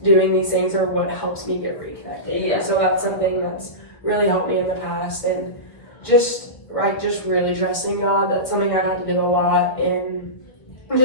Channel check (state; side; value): late; right; 1.3 ms